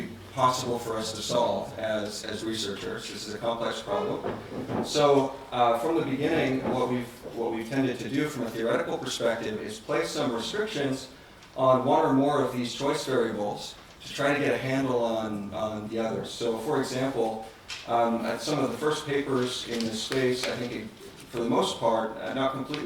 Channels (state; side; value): identical; both; correlation 1.00